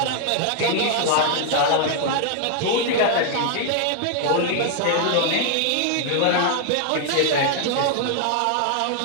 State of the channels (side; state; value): both; different; correlation 0.00